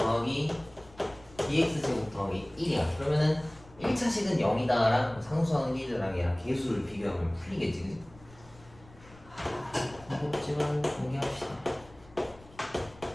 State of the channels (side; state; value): left; noise; rumble, 23 dB below the sound